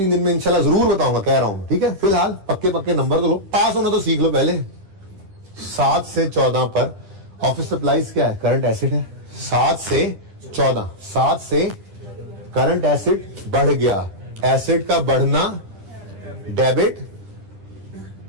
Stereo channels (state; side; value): late; left; 10 ms